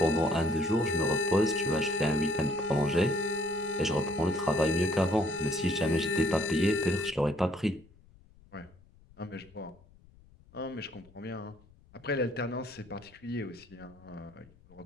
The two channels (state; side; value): noise; left; rumble, 27 dB below the sound